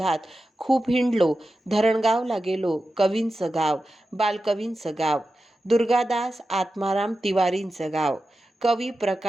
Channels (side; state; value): both; normal; correlation 0.92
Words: खूप हिंडलो. धरणगावला गेलो, कवींचं गाव, बालकवींचं गाव, दुर्गादास आत्माराम तिवारींचं गाव. कवी